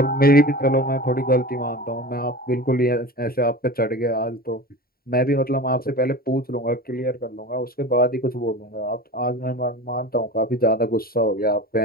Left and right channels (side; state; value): right; late; 0.43 ms